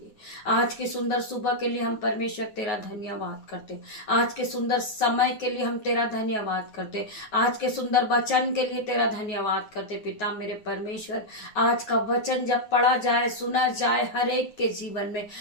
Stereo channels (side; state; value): right; late; 9.5 ms